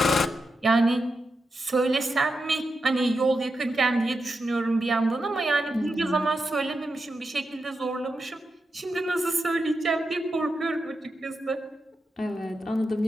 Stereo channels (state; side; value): normal; both; correlation 0.88